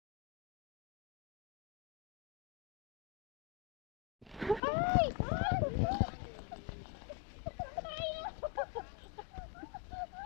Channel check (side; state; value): right; drops out; at 4.6 s